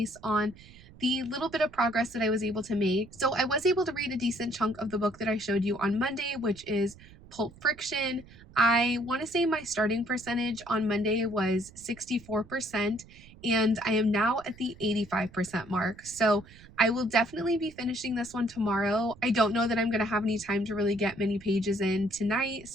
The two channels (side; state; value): right; noise; rumble, 22 dB below the sound